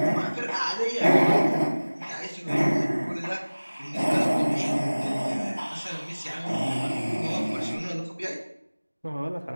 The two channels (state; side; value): inverted; both; correlation -1.00